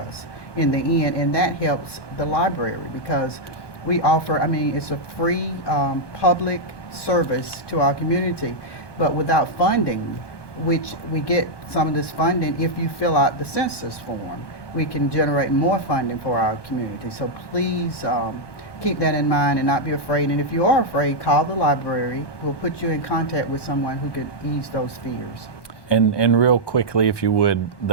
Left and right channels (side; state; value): right; late; 1.2 ms